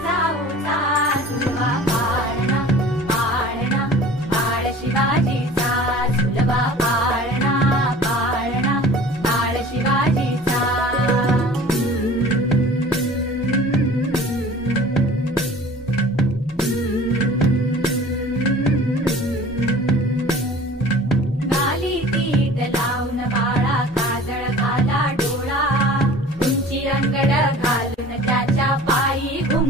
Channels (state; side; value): normal; both; correlation 0.44